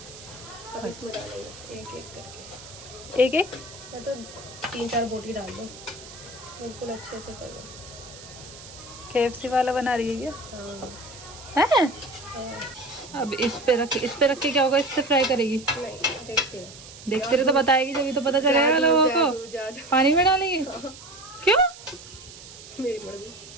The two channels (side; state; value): right; noise; hiss, 17 dB below the sound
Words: अब इसमें डालेंगे एक एक करके। एक एक मैं तो 3-4 बोटी डाल दो, बिल्कुल अच्छे से कर लो। KFC वाला बना रही है हाँ क्या है? हाँ। अब इस पे रख के क्या होगा? इससे फ्राई करेगी? नहीं देखते हो। देखते रहे तो बताएगी, जब तो पता चलेगा लोगों को। जादू पानी में डालेगी? क्यों? मेरी मर्जी।